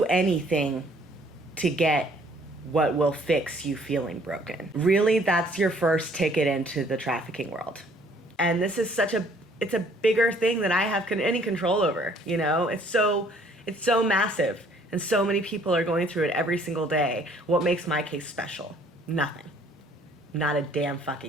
anything to get what will fix you feeling broken. Really, that's your first ticket into the trafficking world. And this is it's a bigger thing than I have any control over, It's so massive, and so many people are going through it every single day. What makes my case special? Nothing. Not a damn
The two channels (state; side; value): normal; both; correlation 0.60